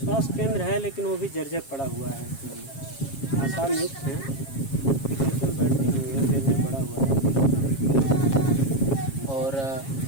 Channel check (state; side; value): late; right; 7.4 ms